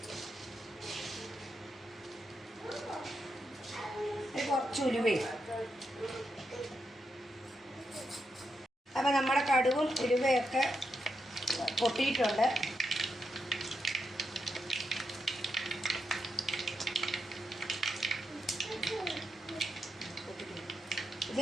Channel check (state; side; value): normal; both; correlation 0.84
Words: കുറച്ച് ഉലുവയും. അപ്പം നമ്മുടെ കടുകും ഉലുവയൊക്കെ പൊട്ടിയിട്ടുണ്ട്.